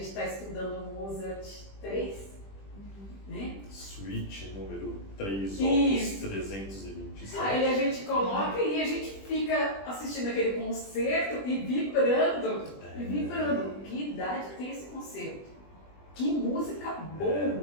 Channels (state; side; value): late; right; 20 ms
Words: está estudando Mozart 3, né? Suíte número 3, opus Isso. 327. Aí a gente coloca e a gente fica assistindo aquele concerto e vibrando. Que idade tem esse concerto? Que música